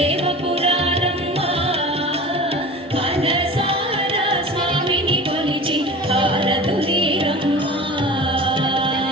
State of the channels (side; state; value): both; normal; correlation 0.36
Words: మనసారా స్వామిని కొలిచి హారతులీరమ్మా